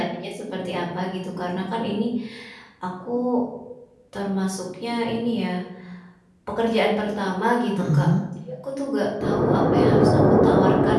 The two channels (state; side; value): identical; both; correlation 1.00